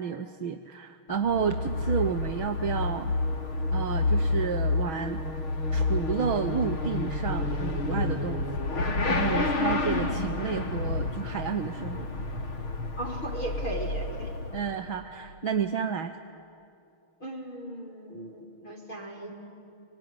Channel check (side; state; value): right; late; 6.5 ms